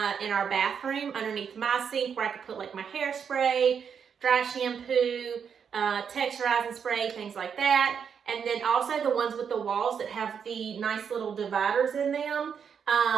in our bathroom underneath my sink where I could put like my hairspray, dry shampoo, texturizing spray, things like that. And then also the ones with the walls that have the nice little dividers in them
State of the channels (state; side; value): quieter; left; 7.1 dB